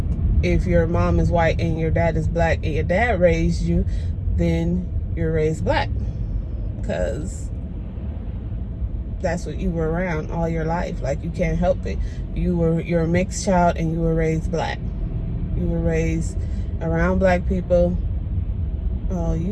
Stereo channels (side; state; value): both; identical; correlation 1.00